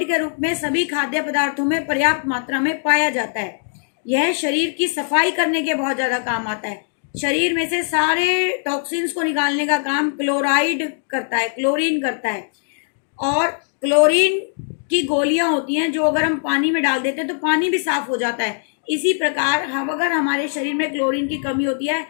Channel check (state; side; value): silent; right; digital silence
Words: के रूप में सभी खाद्य पदार्थों में पर्याप्त मात्रा में पाया जाता है। यह शरीर की सफाई करने के बहुत ज़्यादा काम आता है। शरीर में से सारे टॉक्सिन्स को निकालने का काम क्लोराइड करता है, क्लोरीन करता है। और क्लोरीन की गोलियां होती हैं जो अगर हम पानी में डाल देते हैं तो पानी भी साफ हो जाता है। इसी प्रकार हम अगर हमारे शरीर में क्लोरीन की कमी होती है